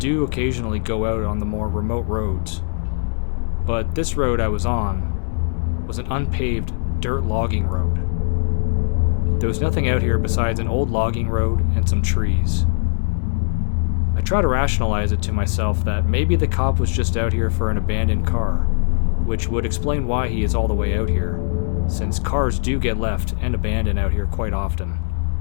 occasionally go out on the more remote roads. But this road I was on was an unpaved dirt logging road. There was nothing out here besides an old logging road and some trees. I try to rationalize it to myself that maybe the cop was just out here for an abandoned car, which would explain why he is all the way out here, since cars do get left and abandoned out here quite often.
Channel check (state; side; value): silent; right; digital silence